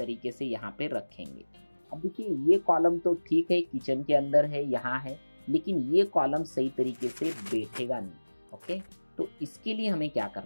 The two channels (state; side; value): inverted; both; correlation -1.00